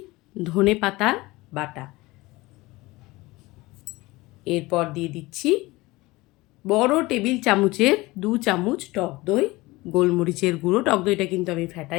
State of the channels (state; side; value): quieter; right; 21.0 dB